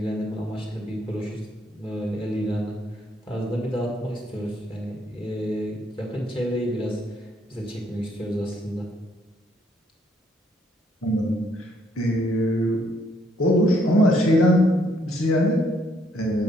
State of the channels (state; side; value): normal; both; correlation 0.70